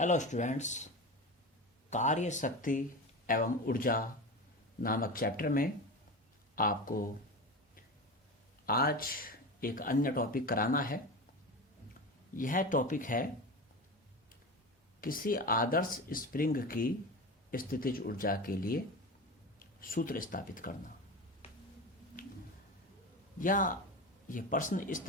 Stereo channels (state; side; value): normal; both; correlation 0.26